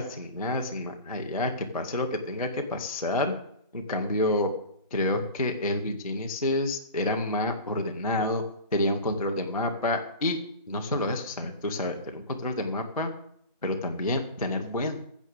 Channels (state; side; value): inverted; both; correlation -0.33